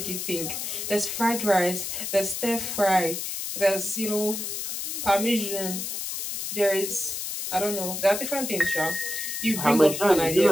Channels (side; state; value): left; noise; hiss, 4 dB below the sound